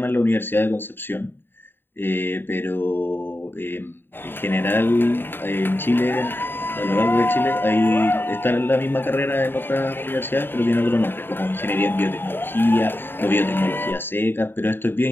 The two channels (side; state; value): right; late; 0.10 ms